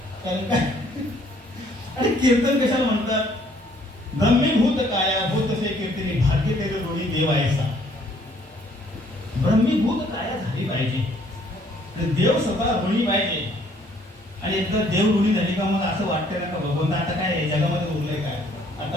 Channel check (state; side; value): normal; both; correlation 0.62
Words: कारण काय आणि कीर्तन कशाला म्हणतात ब्रह्मीभूत काया भूत से कीर्तनी भाग्य तेरे रोणी देवायचा ब्रह्मीभूत काया झाली पाहिजे देव स्वतः ऋणी पाहिजे आणि एकदा देव ऋणी झाली का मग असं वाटतं ना का भगवंत आता काय जगामध्ये उरलंय काय